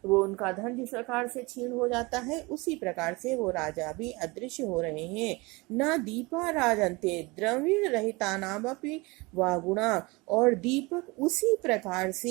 उनका धन जिस प्रकार से क्षीण हो जाता है उसी प्रकार से वो राजा भी अदृश्य हो रहे हैं। न दीपा राजन्ते द्रविण रहिता नामपि वा गुणा, और दीपक उसी प्रकार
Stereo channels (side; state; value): left; quieter; 24.6 dB